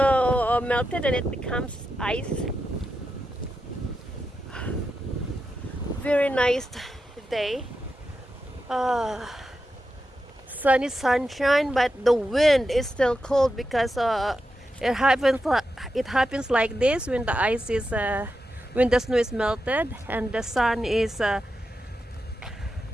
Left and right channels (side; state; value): both; normal; correlation 0.88